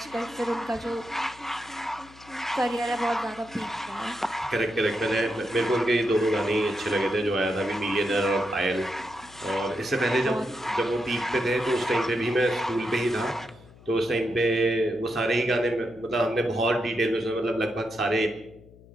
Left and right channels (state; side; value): noise; left; hum, 23 dB below the sound